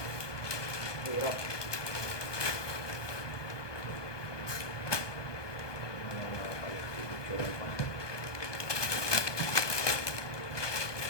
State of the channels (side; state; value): right; late; 1.2 ms